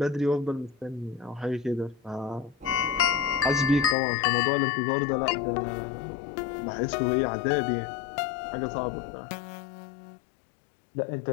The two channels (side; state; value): right; drops out; at 4.0 s